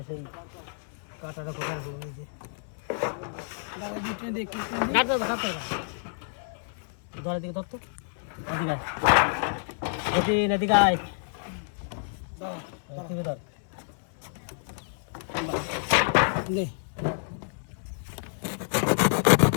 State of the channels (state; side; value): silent; right; 59 dB below the other